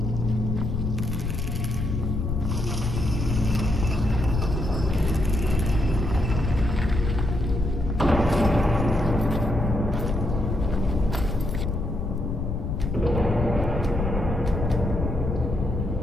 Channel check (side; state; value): left; noise; rumble, 2 dB below the sound